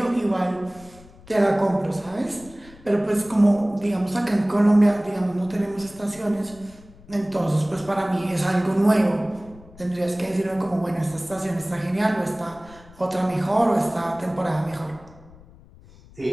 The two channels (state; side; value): noise; left; rumble, 23 dB below the sound